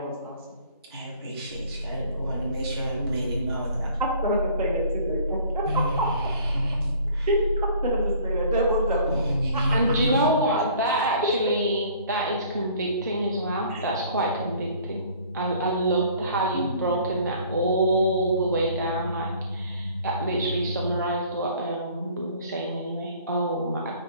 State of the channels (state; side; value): inverted; both; correlation -0.53